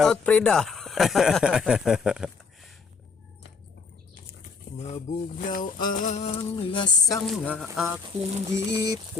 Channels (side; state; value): right; quieter; 5.0 dB